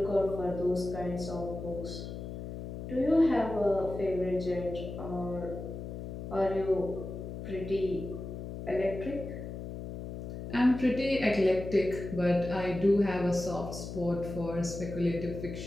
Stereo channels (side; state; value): left; noise; hum, 8 dB below the sound